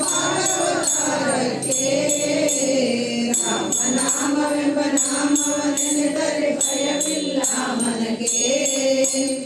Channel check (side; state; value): both; identical; correlation 1.00